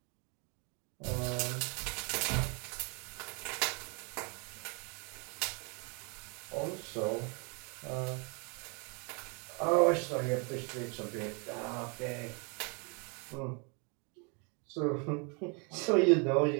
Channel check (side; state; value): left; quieter; 34.4 dB